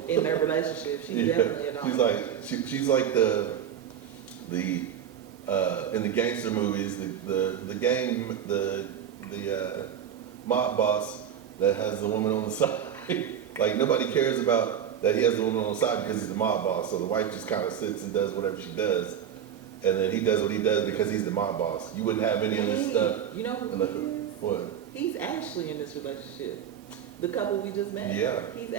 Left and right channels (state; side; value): quieter; left; 9.1 dB